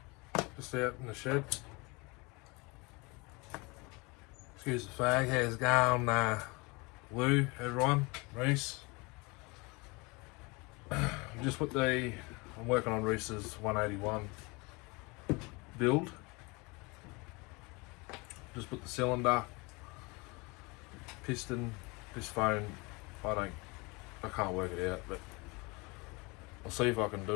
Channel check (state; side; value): quieter; right; 27.0 dB